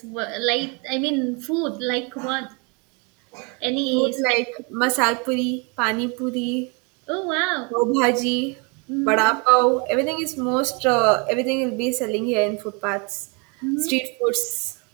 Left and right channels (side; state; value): left; quieter; 32.7 dB